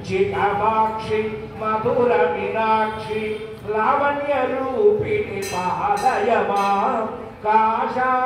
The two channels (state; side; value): identical; both; correlation 1.00